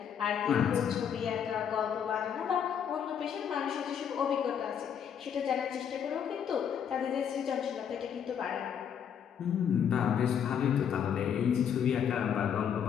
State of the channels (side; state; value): right; quieter; 8.2 dB